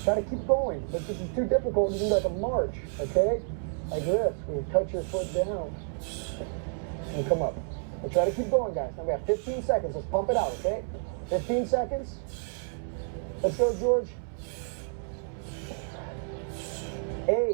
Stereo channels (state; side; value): silent; left; 58 dB below the other